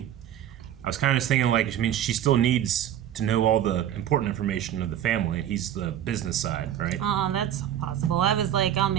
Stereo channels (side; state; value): left; quieter; 10.8 dB